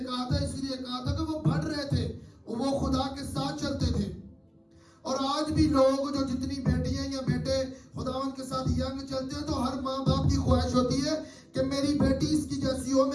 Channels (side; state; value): both; identical; correlation 1.00